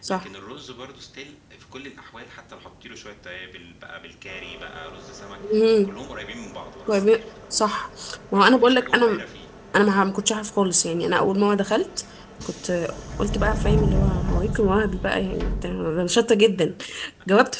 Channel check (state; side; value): identical; both; correlation 1.00